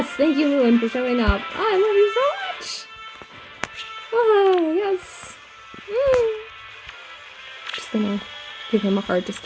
thank you, Lewyn, for showing up. Oh, I love you so much! Oh, yes. Just gonna give him a heart just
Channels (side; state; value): both; identical; correlation 1.00